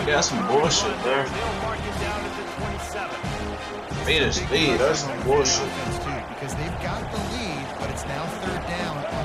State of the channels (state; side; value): identical; both; correlation 1.00